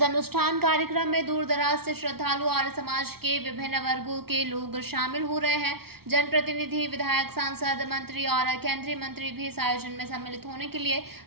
अनुष्ठान कार्यक्रम में दूर दराज से श्रद्धालु और समाज के विभिन्न वर्गों के लोग शामिल हो रहे हैं। जनप्रतिनिधि, विधायक, सांसद, मंत्री और केंद्रीय मंत्री भी इस आयोजन में सम्मिलित होने के लिए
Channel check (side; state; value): left; late; 0.95 ms